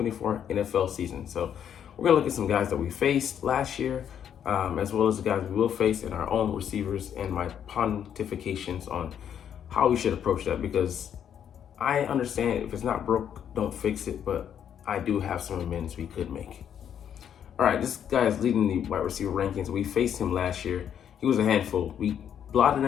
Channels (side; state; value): right; quieter; 9.0 dB